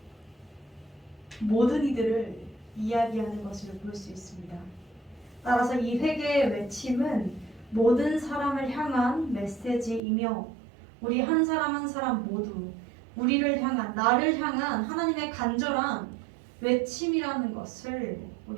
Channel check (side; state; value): left; drops out; at 10.0 s